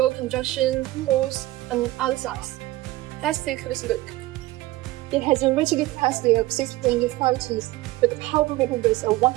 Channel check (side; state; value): left; quieter; 18.2 dB